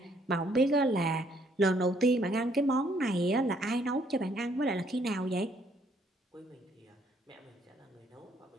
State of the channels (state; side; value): normal; both; correlation 0.67